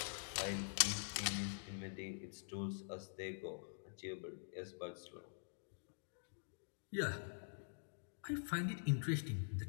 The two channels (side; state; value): right; silent; digital silence